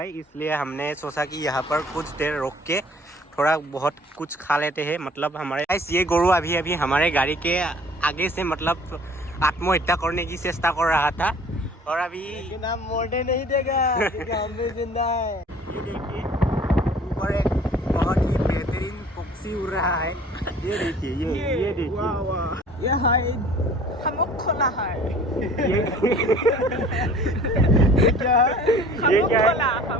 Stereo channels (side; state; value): both; normal; correlation 0.50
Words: इसलिए हमने सोचा कि यहाँ पर कुछ देर रोक के थोड़ा बहुत कुछ खा लेते हैं। मतलब हमारे ये गोरू अभी अभी हमारे गाड़ी के आगे से मतलब आत्महत्या करने की चेष्टा कर रहा था, और अभी लेकिन हम मोड़ने नहीं देगा क्योंकि हम भी जिंदा है। ये देखिए ऊपर एक बहुत ही बेहतरीन पक्षी उड़ रहा है। ये देखिए, ये देखिए, वाह वाह, ये है खमुक खोला है। ये क्या है? खमुक खोला,